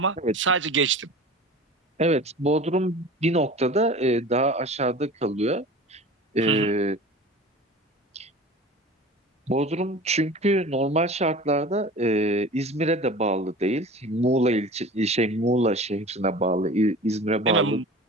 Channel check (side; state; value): both; normal; correlation 0.38